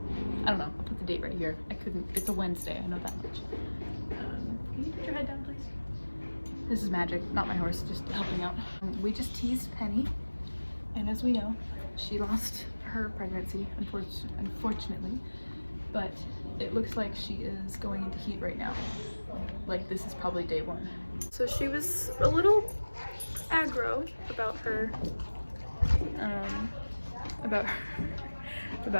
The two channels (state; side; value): inverted; both; correlation -1.00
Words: I don't know, I'll put the date right here. It's a Wednesday, I know that much. Can you put your head down, please? This is Magic, not my horse, just helping out. We just teased Penny, and as we know, she lost her pregnancy, unfortunately, but it looks like she is going into heat right now. Like, this is probably day one. So she was a little aggro about her,